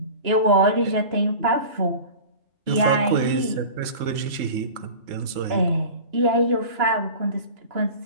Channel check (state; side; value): late; left; 3.7 ms